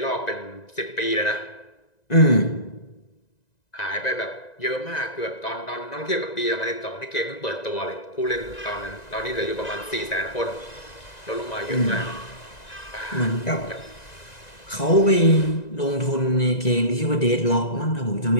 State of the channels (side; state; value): right; late; 1.9 ms